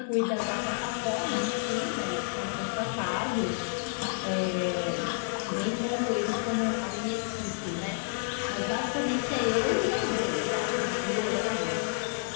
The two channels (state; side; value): silent; right; 58 dB below the other